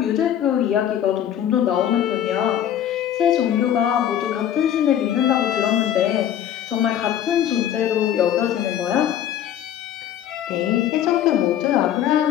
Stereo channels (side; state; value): right; quieter; 10.5 dB